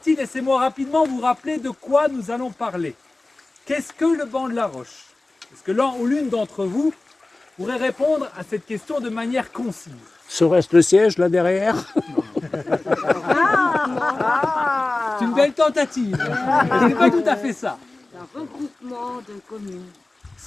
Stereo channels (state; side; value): quieter; right; 3.0 dB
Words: laissez-moi rapidement vous rappeler de quoi nous allons parler. Qu'est-ce que le banc de la Roche? Est-ce que l'un ou l'une d'entre vous pourrait répondre à cette question de manière concise? Serait-ce le siège là derrière? C'est une belle tentative, mais ce n'est pas tout à fait ça. Un regroupement de communes.